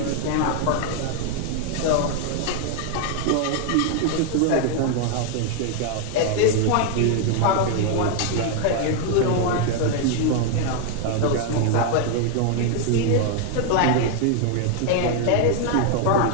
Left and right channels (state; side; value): different; both; correlation 0.00